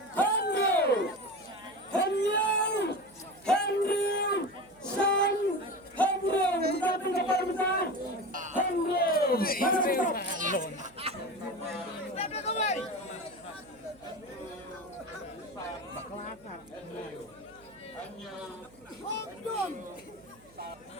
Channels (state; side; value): noise; right; hum, 28 dB below the sound